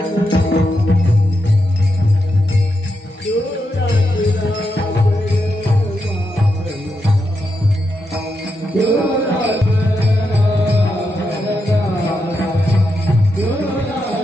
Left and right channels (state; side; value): normal; both; correlation 0.85